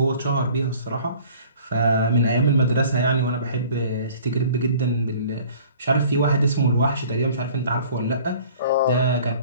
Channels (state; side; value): inverted; both; correlation -0.50